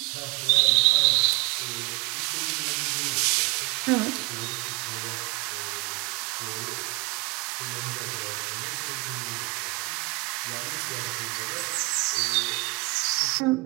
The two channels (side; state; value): left; quieter; 27.5 dB